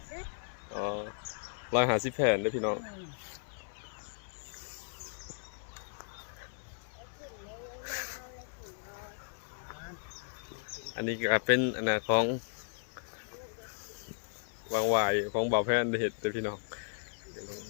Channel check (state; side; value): silent; right; 54 dB below the other